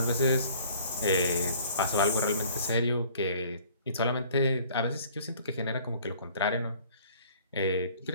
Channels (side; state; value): both; inverted; correlation -0.53